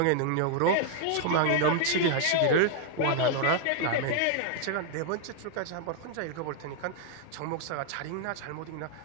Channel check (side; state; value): both; different; correlation 0.00